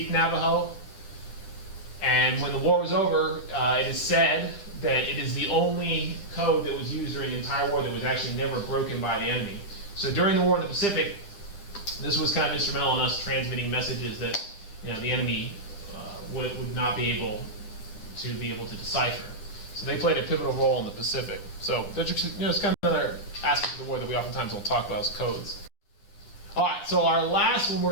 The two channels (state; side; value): late; right; 10 ms